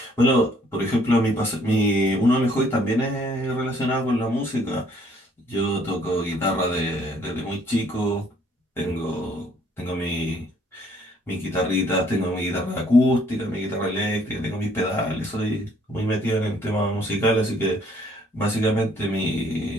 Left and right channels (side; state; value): both; normal; correlation 0.63